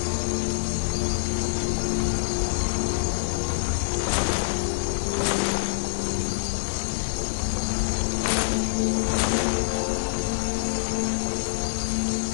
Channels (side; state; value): right; silent; 59 dB below the other